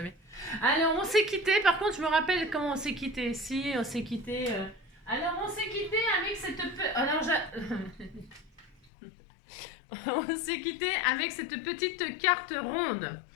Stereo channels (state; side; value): drops out; right; at 8.9 s